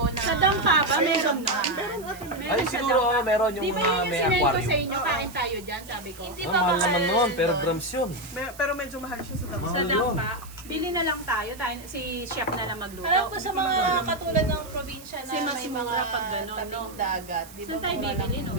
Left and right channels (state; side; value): noise; right; hiss, 19 dB below the sound